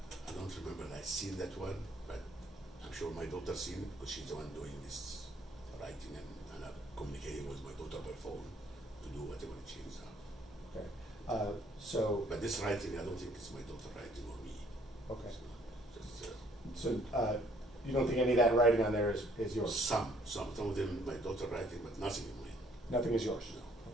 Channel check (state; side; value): normal; both; correlation 0.62